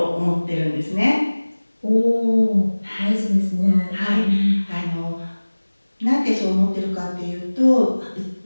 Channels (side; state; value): both; inverted; correlation -1.00